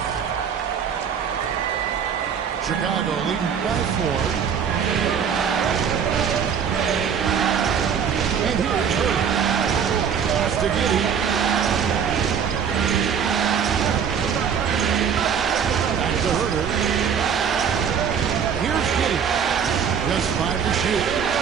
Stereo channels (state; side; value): quieter; left; 7.4 dB